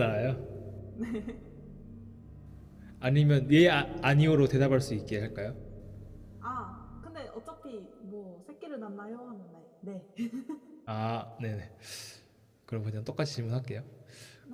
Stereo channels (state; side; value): identical; both; correlation 1.00